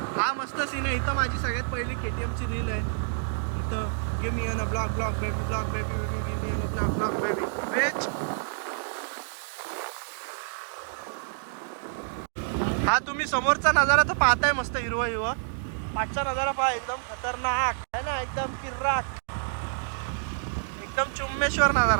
हा मस्त सीन आहे. इथं माझी सगळ्यात पहिली KTMची रील आहे. इथं give me on a block block baby block baby baby give me on a block block baby vetch. हा तुम्ही समोरचा नजारा तर पाहताय मस्त हिरवं हिरवं. मागचा नजारा पहा एकदम खतरनाक आहे ना. एकदम किर्राक. एकदम चुम्मेश्वर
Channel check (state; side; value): silent; left; digital silence